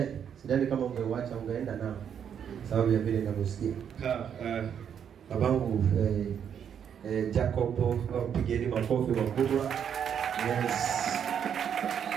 sidhani kama ungeuacha ungeenda nao, sababu ya vile ninavyosikia. Babangu Jacob, pigeni makofi makubwa. Yes.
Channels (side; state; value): left; quieter; 8.3 dB